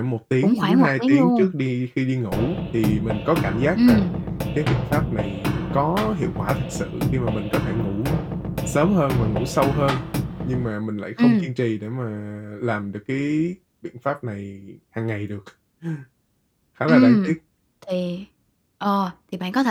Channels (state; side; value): identical; both; correlation 1.00